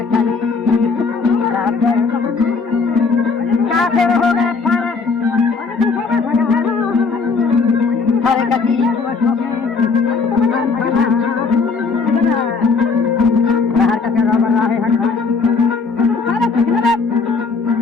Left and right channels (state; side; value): quieter; right; 4.5 dB